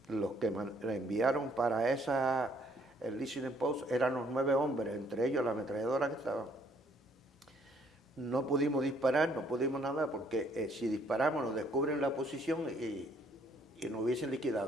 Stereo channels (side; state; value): both; normal; correlation 0.65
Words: los que enviaron para el Listening Post eran los 9 hombres, entre ellos la ametralladora que estaba. No pudimos disparar, no pudimos nada, porque si disparamos nos descubren la posición y nos hubiesen